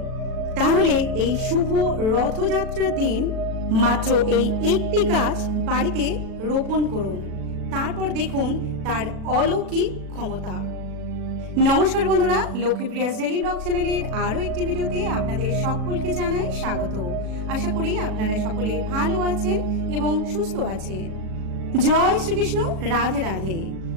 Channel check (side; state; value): left; late; 37 ms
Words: তাহলে এই শুভ রথযাত্রার দিন মাত্র এই একটি গাছ বাড়িতে রোপণ করুন, তারপর দেখুন তার অলৌকিক ক্ষমতা। নমস্কার বন্ধুরা, লক্ষ্মীপ্রিয়াস ডেইলি ব্লগ চ্যানেলের আরও একটি ভিডিওতে আপনাদের সকলকে জানাই স্বাগত। আশা করি আপনারা সকলে ভালো আছেন এবং সুস্থ আছেন। জয় শ্রীকৃষ্ণ, রাধে রাধে।